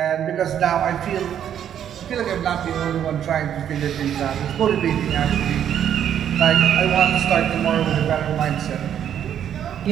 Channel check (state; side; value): quieter; left; 9.6 dB